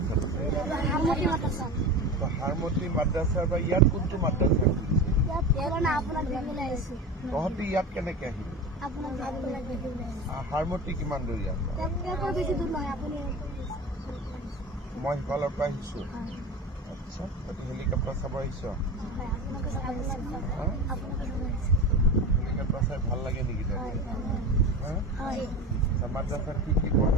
আছে? হাৰমতি মাদ্ৰাছাৰ বা ইয়াত কোনটো মাদ্ৰাছা? তহঁতি ইয়াত কেনেকে আহিবি? হাৰমতি কিমান দূৰ ইয়াত? মই সিফালৰ পৰা আহিছো। আচ্ছা, তহঁতি হেলিকপ্টাৰ চাব আহিছ? হেলিকপ্টাৰ চাই ভাল লাগে নেকি তহঁতি? মাদ্ৰাছাত কি কি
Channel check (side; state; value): both; normal; correlation 0.29